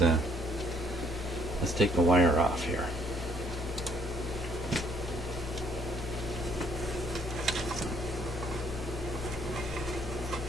Let's take the wire off here.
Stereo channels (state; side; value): normal; both; correlation 0.64